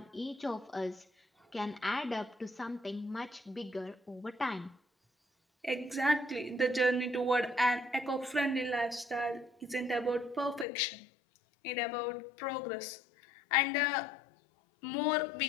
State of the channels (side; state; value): right; drops out; at 10.7 s